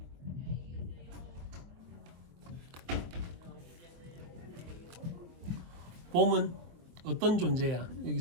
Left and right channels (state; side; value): late; left; 23 ms